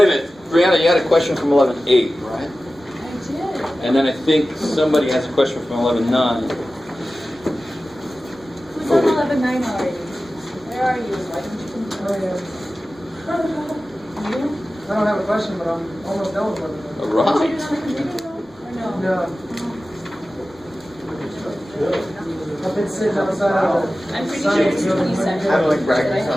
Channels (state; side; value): normal; both; correlation 0.95